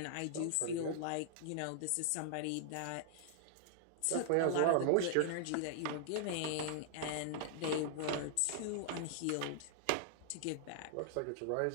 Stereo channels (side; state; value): both; different; correlation -0.01